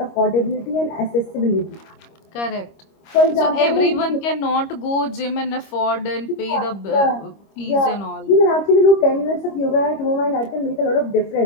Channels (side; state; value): right; late; 25 ms